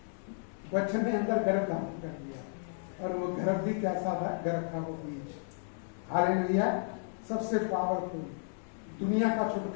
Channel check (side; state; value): right; silent; digital silence